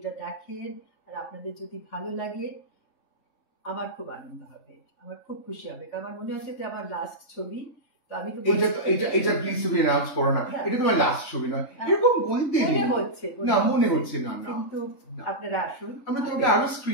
দেখেন আর আপনাদের যদি ভালো লাগে, আমার খুব আনন্দ হবে, আমার খুব খুশি হবে। কারণ আমার মনে হচ্ছে যে আমার লাস্ট ছবি। তো আমি তো এটা প্লিজ তুমি অ্যানাউন্স করো না, এটা তোমার লাস্ট ছবি নয়, এরকম বলতে মনে হচ্ছে না। কিন্তু আপনারা আসুন, আমরা তোমাকে আরো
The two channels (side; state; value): right; late; 3.6 ms